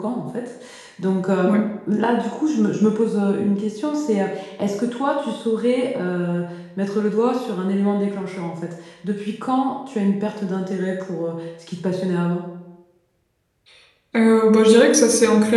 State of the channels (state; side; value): identical; both; correlation 1.00